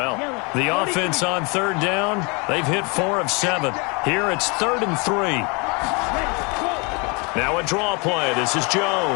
The offense on 3rd down, they've hit 4 of 7. Here it's 3rd and 3. Now a draw play. This is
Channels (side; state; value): right; quieter; 30.6 dB